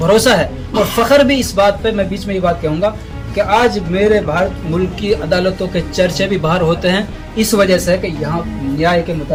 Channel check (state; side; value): identical; both; correlation 1.00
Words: है। और फ़ख्र भी इस बात पे, मैं बीच में ये बात कहूँगा कि आज मेरे भारत मुल्क की अदालतों के चर्चे भी बाहर होते हैं इस वजह से कि यहाँ न्याय के